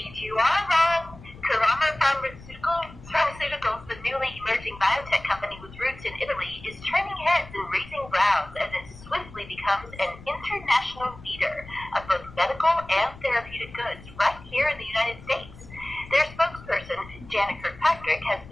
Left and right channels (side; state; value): left; noise; rumble, 18 dB below the sound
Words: you are, Ron. Karama Pharmaceuticals, the newly emerging biotech company with roots in Italy, is turning heads and raising brows as it swiftly becomes an international leader of both medical and therapeutic goods right here in the United States. Their spokesperson, Janet Kirkpatrick, has